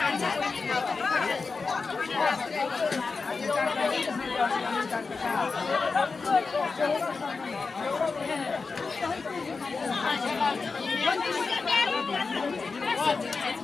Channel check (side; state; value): right; quieter; 4.4 dB